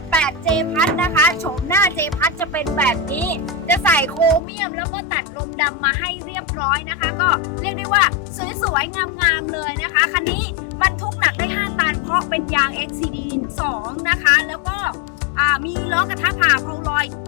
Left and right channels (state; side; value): drops out; right; at 4.4 s